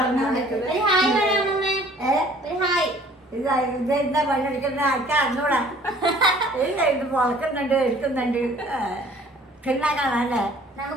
ഇതെന്താ പണിയെടുക്കുന്ന ആൾക്കാർ അറിഞ്ഞൂടാ. ഇത് പൊളക്കുന്നുണ്ട് എടുക്കുന്നുണ്ട്. തിന്നാക്കാണല്ലേ?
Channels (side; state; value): both; normal; correlation 0.54